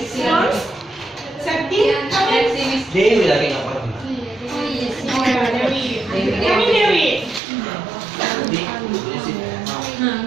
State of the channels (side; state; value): left; drops out; at 7.4 s